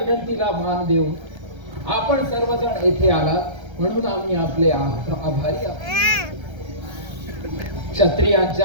मान देऊन आपण सर्वजण येथे आलात म्हणून आम्ही आपले आभारी आहोत.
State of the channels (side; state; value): left; late; 1.3 ms